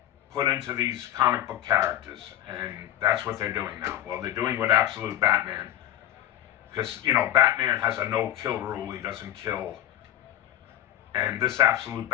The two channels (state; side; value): quieter; right; 12.5 dB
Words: put into these comic book characters, and that's what they're doing now. Well, they're doing with Absolute Batman, because, Batman has a no-kill rule. He doesn't kill, and this Absolute